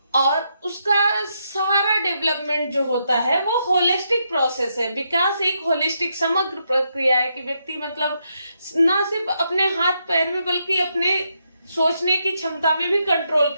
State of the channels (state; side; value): inverted; both; correlation -0.80